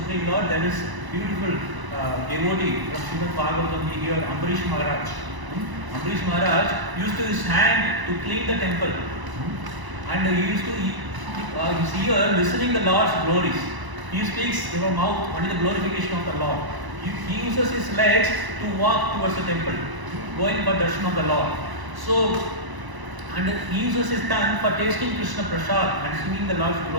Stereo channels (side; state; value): left; late; 1.0 ms